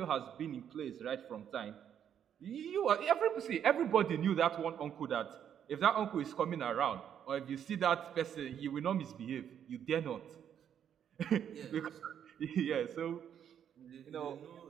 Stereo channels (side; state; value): left; quieter; 9.0 dB